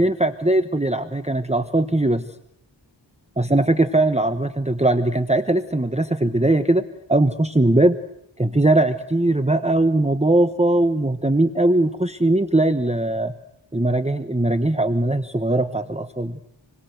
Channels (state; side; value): normal; both; correlation 0.74